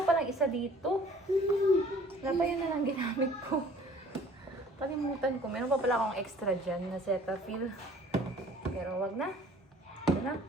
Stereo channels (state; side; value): normal; both; correlation 0.52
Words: palang isa dito. Wala pa yun na lang ginamit ko. Kalimutan ko, meron pa pala akong extra dyan na Cetaphil. Pero wag na. Ito na,